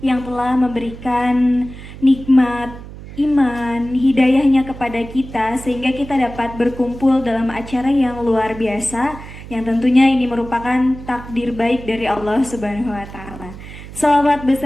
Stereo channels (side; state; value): right; noise; hum, 14 dB below the sound